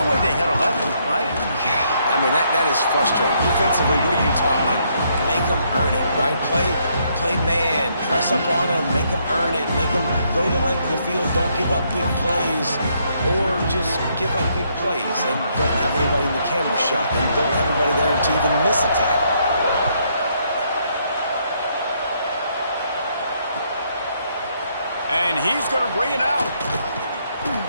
way they had 11, right? Yeah, I mean, that is frustrating. Defensively, what are you talking? Make them earn it, right? Play man, press up on them, make them earn it, make them go the length of the field, don't give up big plays, or just give up big plays and don't have anybody in the camera shot and don't have anybody there to even miss a tackle. And he's going to bring it out.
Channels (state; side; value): inverted; both; correlation -0.72